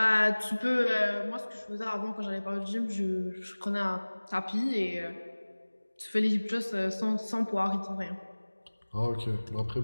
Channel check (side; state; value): both; inverted; correlation -1.00